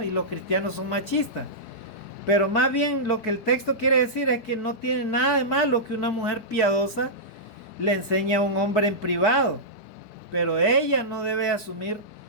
y los cristianos son machistas. Pero más bien lo que el texto quiere decir es que no tiene nada de malo que una mujer piadosa le enseñe a un hombre en privado, pero ella no debe asumir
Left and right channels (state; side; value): late; right; 4.7 ms